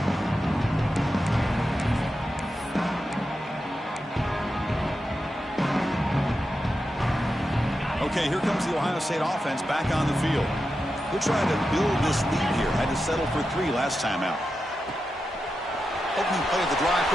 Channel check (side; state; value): both; normal; correlation 0.89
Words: Okay, here comes the Ohio State offense back on the field. They're trying to build this lead here. Had to settle for 3 last time out. Opening play of the drive,